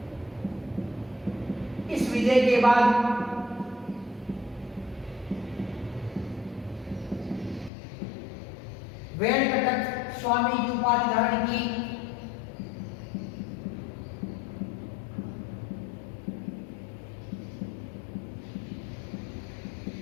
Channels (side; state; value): right; drops out; at 7.7 s